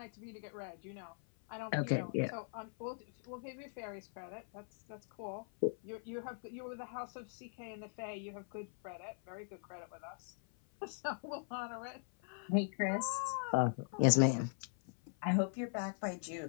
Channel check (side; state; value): right; silent; 51 dB below the other